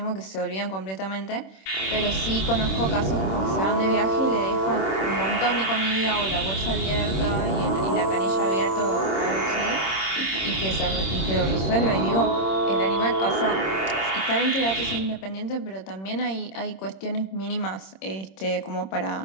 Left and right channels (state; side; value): late; right; 26 ms